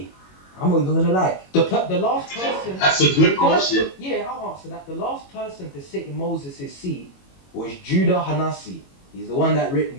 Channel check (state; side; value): late; right; 21 ms